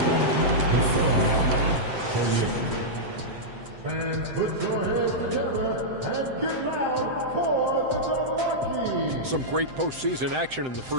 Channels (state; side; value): late; left; 7.8 ms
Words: fans put your hands together and get loud for the Milwaukee. Some great postseason action in the